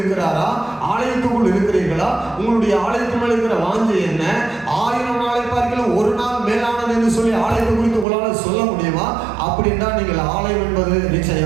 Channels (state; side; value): drops out; left; at 8.1 s